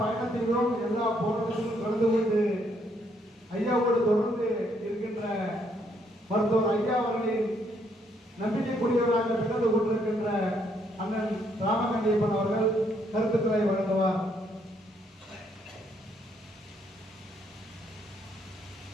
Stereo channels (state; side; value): normal; both; correlation 0.71